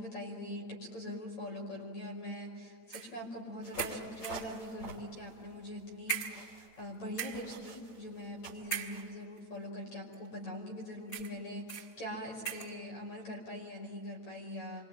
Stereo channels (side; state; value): right; late; 8.9 ms